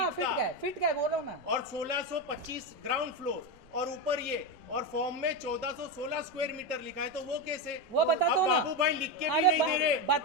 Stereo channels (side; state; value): right; noise; rumble, 29 dB below the sound